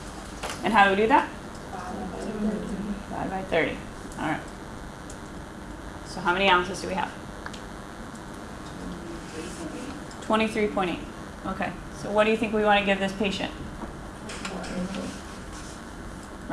And how do we do that? ounces. Divide by 30. All right. So how many ounces do we have? 23.8. Okay. So what do you think we want to give this patient?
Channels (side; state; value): both; identical; correlation 1.00